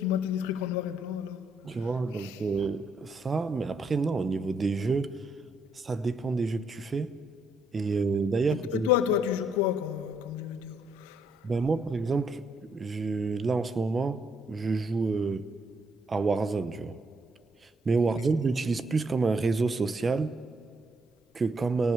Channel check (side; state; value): both; normal; correlation 0.73